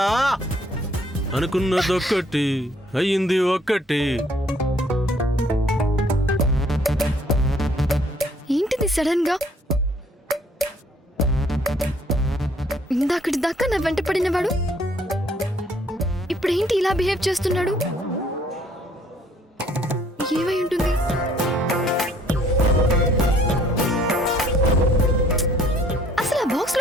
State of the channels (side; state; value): both; normal; correlation 0.62